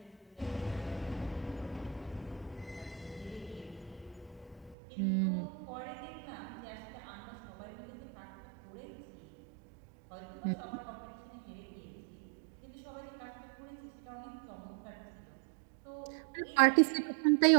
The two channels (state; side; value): drops out; left; at 4.8 s